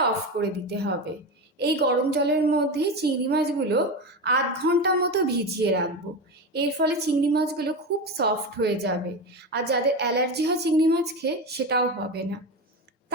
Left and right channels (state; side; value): normal; both; correlation 0.20